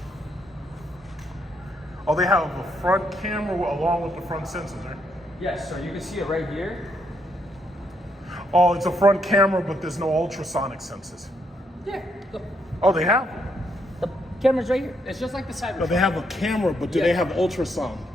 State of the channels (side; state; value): both; normal; correlation 0.75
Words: Oh, they have a front camera along with the front sensors, right? Yes, so you can see it right here. Oh, it's a front camera, but there's no ultrasonic sensors. Yeah, look, Oh, they have. the camera's right here. It's just like the Cybertruck. No, they have a camera, but do Yeah. they have ultrasound?